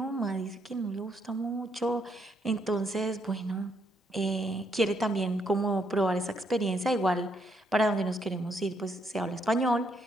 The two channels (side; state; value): both; normal; correlation 0.74